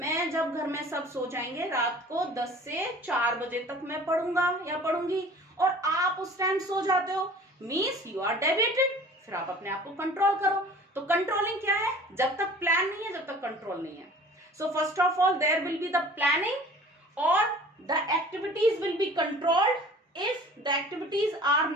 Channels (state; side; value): normal; both; correlation 0.46